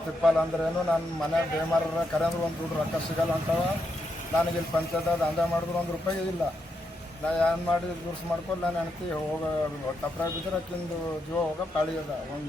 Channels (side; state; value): both; normal; correlation 0.82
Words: ಅಂದ್ರೇನು ನನ್ನ ಮನೆ ಬೇಮಾರ ಕರೆ ಅಂದ್ರೆ ಒಂದು ದುಡ್ಡು ರೊಕ್ಕ ಸಿಗಲ್ಲ ಅಂತವ. ನನಗೆ ಇಲ್ಲಿ ಪಂಚಾಯತ್ ದಂಧೆ ಮಾಡಿದ್ರು ₹1 ಇಲ್ಲ. ನಾ ಏನು ಮಾಡಿ ದುರ್ಸ್ ಮಾಡ್ಕೊಂಡು ನಾನು ಹೆಣ್ತಿ ಹೋಗ ತಪ್ಪರಾಗ ಬಿದ್ದರೆ ಅಕ್ಕಿಂದು ಜೀವ ಹೋಗೋ ಪಾಳಿ ಅದ.